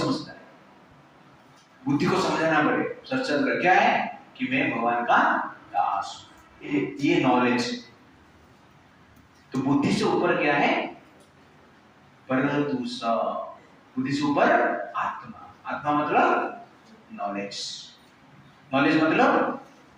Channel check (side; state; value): both; identical; correlation 1.00